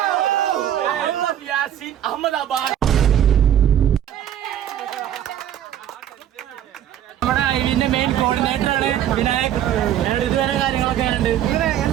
അഹമ്മദാബാദ്. നമ്മുടെ ഐവിന്റെ മെയിൻ കോർഡിനേറ്റർ ആണ് വിനായക്. ഇതുവരെ കാര്യങ്ങളൊക്കെ ഉണ്ട്.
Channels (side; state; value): left; quieter; 10.7 dB